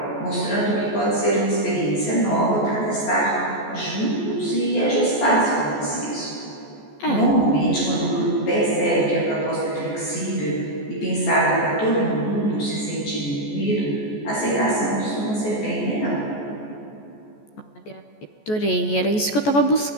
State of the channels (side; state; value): right; late; 14 ms